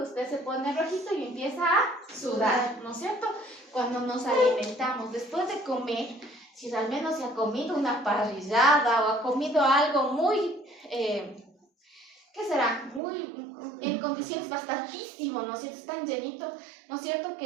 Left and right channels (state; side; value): drops out; left; at 13.0 s